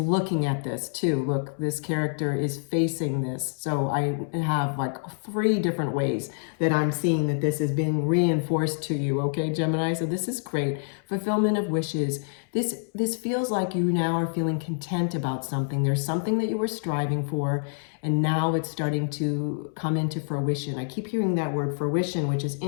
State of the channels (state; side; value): silent; right; 60 dB below the other